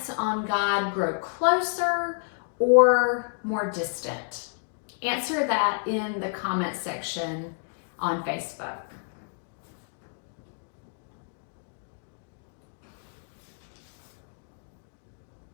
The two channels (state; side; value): silent; right; digital silence